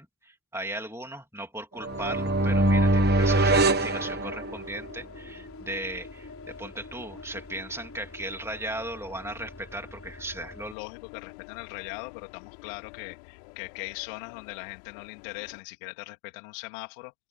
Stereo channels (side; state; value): right; drops out; at 10.8 s